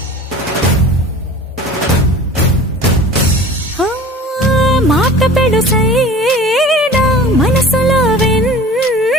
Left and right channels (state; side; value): normal; both; correlation 0.41